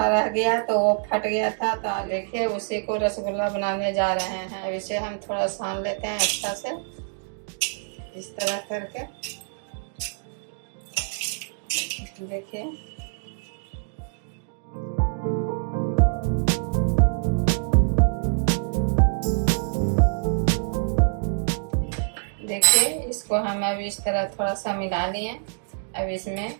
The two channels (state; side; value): silent; left; digital silence